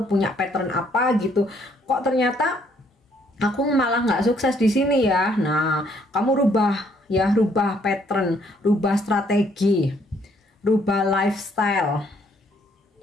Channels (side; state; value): both; normal; correlation 0.67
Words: punya pattern apa gitu, kok ternyata aku malah nggak sukses di sini ya. Nah kamu rubah ya, rubah pattern, rubah strategi, rubah lifestyle.